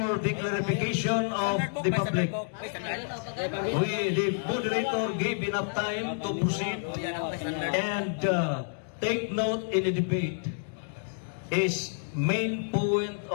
the clarification of the public, the moderator gave enough time to proceed and take note in the debate is main point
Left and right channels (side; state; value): right; silent; digital silence